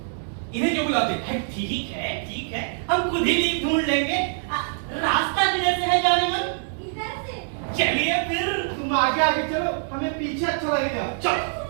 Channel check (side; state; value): left; silent; digital silence